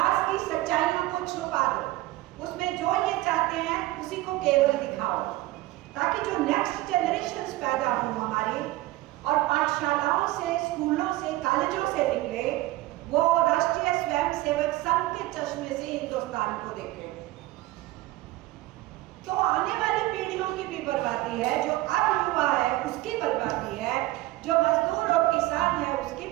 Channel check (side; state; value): left; quieter; 18.2 dB